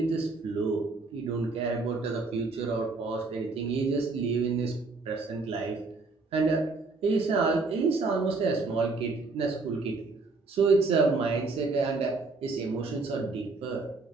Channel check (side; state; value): left; quieter; 3.8 dB